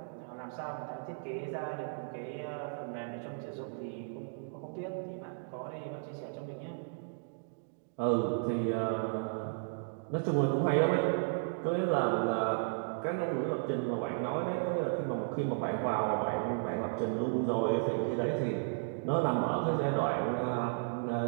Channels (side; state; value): left; silent; digital silence